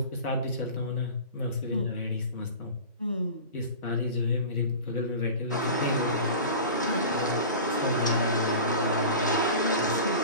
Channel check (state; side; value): inverted; both; correlation -0.35